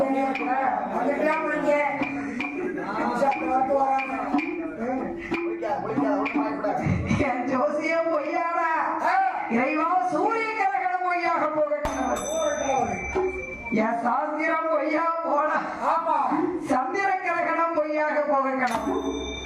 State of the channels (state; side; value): identical; both; correlation 1.00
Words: என் ஜோசியம் பொய்யானா இறைவா சூரிய கிரகணம் பொய்யாக போக என் சாஸ்திரம் பொய்யா போன ஆமா சந்திர கிரகணம் பொய்யாக போகணும்